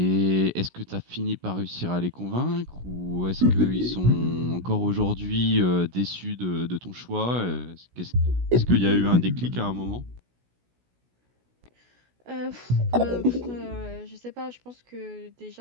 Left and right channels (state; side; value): late; left; 16 ms